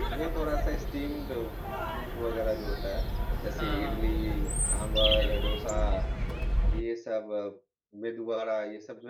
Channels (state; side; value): identical; both; correlation 1.00